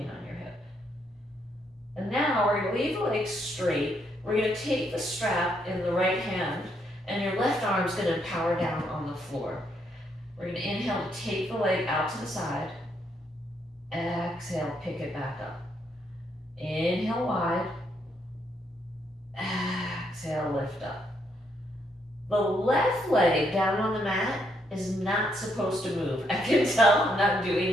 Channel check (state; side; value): normal; both; correlation 0.75